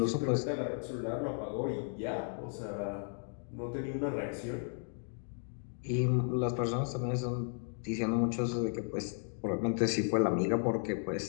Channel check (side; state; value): right; silent; 55 dB below the other